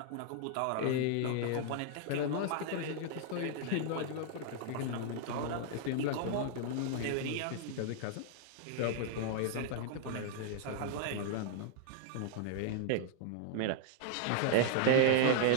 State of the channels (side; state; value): both; different; correlation -0.01